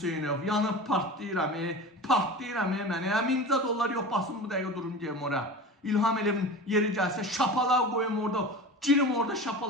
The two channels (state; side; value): normal; both; correlation 0.33